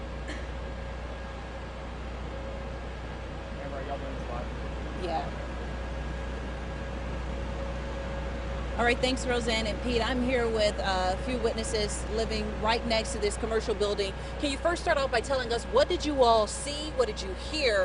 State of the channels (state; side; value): identical; both; correlation 1.00